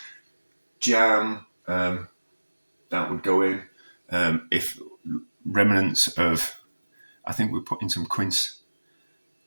jam, that would go in. If remnants of, I think we put in some quince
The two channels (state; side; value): inverted; both; correlation -1.00